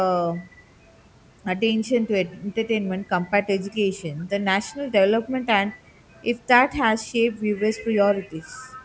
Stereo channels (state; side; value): identical; both; correlation 1.00